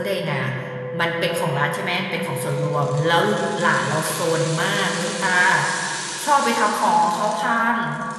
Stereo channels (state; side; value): identical; both; correlation 1.00